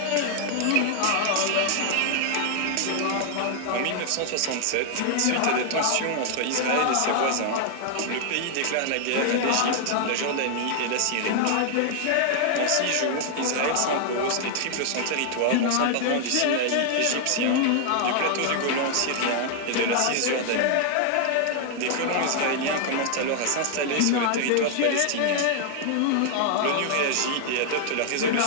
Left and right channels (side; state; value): both; different; correlation 0.00